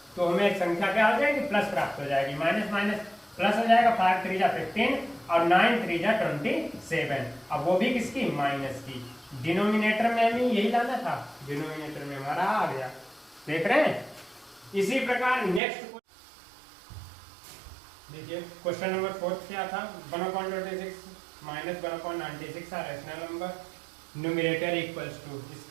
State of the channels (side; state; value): left; drops out; at 15.6 s